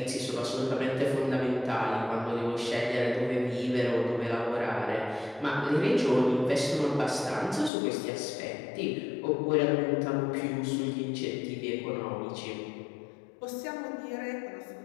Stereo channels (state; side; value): drops out; right; at 7.7 s